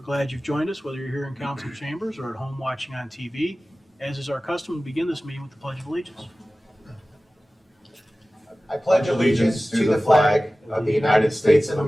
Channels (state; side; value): normal; both; correlation 0.97